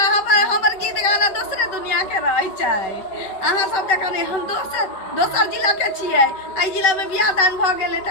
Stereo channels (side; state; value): right; late; 5.2 ms